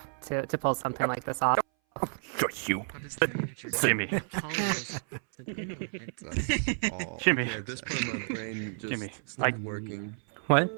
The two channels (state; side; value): silent; left; 57 dB below the other